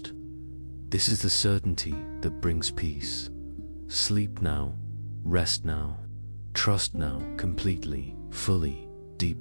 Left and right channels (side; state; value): both; inverted; correlation -1.00